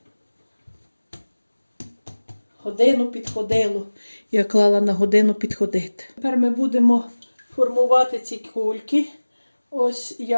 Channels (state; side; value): inverted; both; correlation -1.00